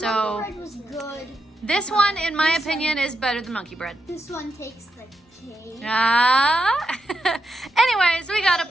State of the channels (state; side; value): normal; both; correlation 0.85